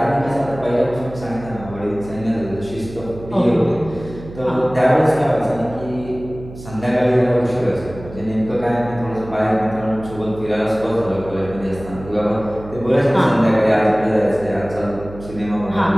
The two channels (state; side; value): noise; right; hum, 15 dB below the sound